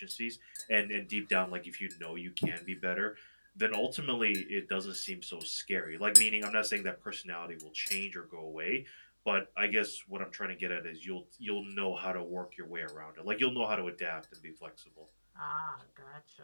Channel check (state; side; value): inverted; both; correlation -1.00